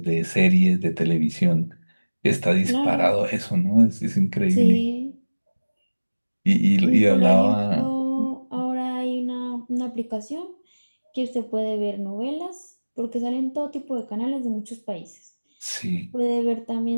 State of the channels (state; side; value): inverted; both; correlation -1.00